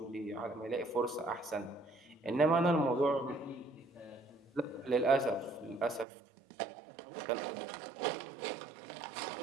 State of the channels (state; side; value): drops out; left; at 6.1 s